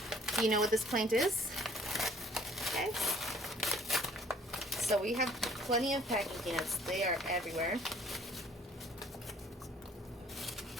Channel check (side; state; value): both; normal; correlation 0.56